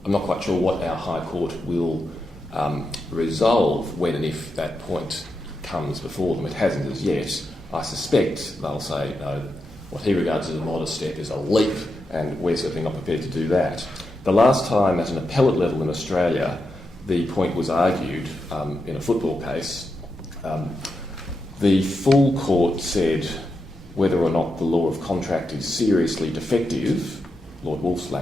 I'm not quite sure what our High Court will resolve when and if that point comes before them. It hasn't as yet. I suspect they'll say, no, what he regards as a modest step is a leap, and we're certainly not prepared to do that. The last time at an appellate level in Australia the point was argued in a football case, the full court said whether or not the law of contract is seriously defective, Lord Wolf's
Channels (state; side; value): normal; both; correlation 0.86